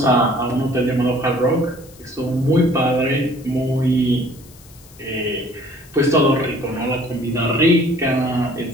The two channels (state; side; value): noise; left; hiss, 24 dB below the sound